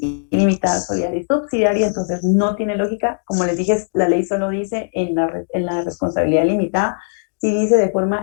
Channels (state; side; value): silent; right; digital silence